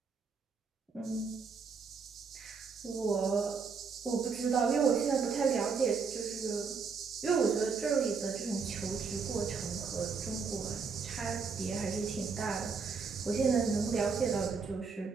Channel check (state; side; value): quieter; left; 5.3 dB